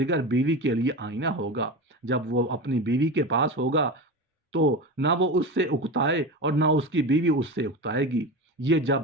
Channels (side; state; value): both; normal; correlation 0.25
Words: بیوی کے لیے آئینہ ہوگا۔ جب وہ اپنی بیوی کے پاس ہوگا تو نہ وہ اس سے اکتائے اور نہ اس کی بیوی اس سے اکتائے گی۔ یہ جب